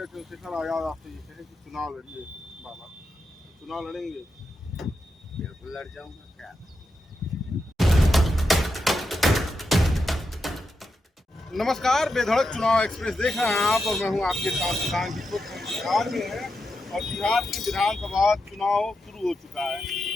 चंद्रशेखर आजाद आपसे ये कहे कि चुनाव लड़िए बाबा, तो चुनाव लड़ेंगे? बिल्कुल लड़ जाऊंगा। क्या नमस्कार, बेधड़क चुनाव एक्सप्रेस देख रहे हैं आप, और मैं हूं आपके साथ किसान की। बिहार में है और बिहार में विधानसभा चुनाव शुरू हो चुका है।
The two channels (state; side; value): normal; both; correlation 0.87